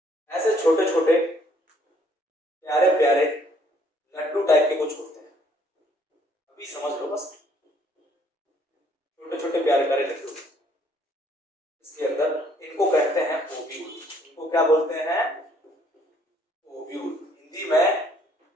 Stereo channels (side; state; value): both; normal; correlation 0.64